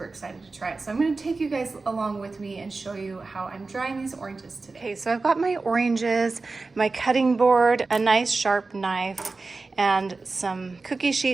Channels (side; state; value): left; quieter; 3.8 dB